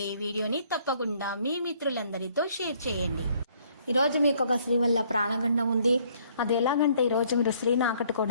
ఈ వీడియోని తప్పకుండా మీ మిత్రులందరితో షేర్ చేయండి. ఈరోజు మీకు ఒక స్త్రీ వల్ల ప్రాణగండం ఉంది. అది ఎలాగంటే ఈరోజు మీరు స్త్రీని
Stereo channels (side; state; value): both; inverted; correlation -0.63